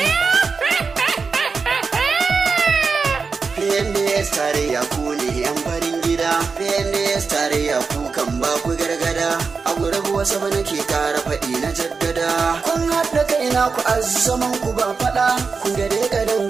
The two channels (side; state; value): left; quieter; 4.9 dB